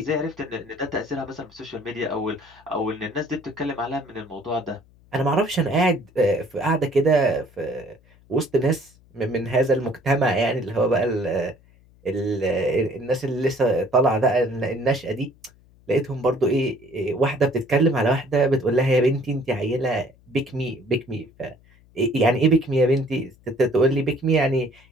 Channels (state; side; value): noise; left; hum, 29 dB below the sound